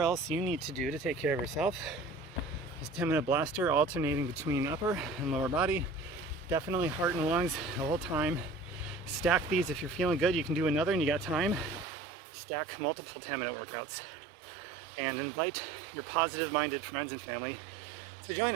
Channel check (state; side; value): drops out; left; at 11.9 s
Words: else you need to do to take care of yourself. This 10-minute blaster alternating between upper and lower body. Definitely heart and lungs the whole time. Stack these if you're feeling good. You can do another and you got time. Stack multiple 10-minute workouts. And invite your positive-minded friends and family to join